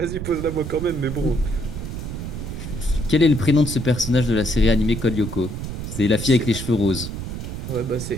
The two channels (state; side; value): noise; right; rumble, 6 dB below the sound